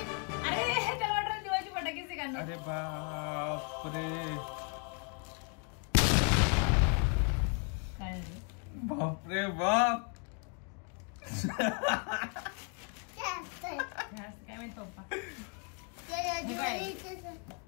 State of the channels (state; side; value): quieter; right; 37.6 dB